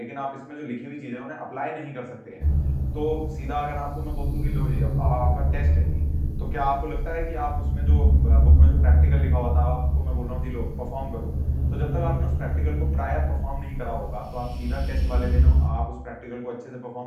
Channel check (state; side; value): identical; both; correlation 1.00